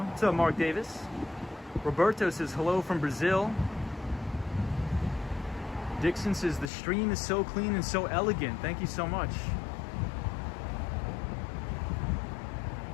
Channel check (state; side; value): drops out; right; at 6.7 s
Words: What's up, Mark Davis? Roberto says hello from Brazil. Dixon says the stream is so clean and so elegant. Thank you so much.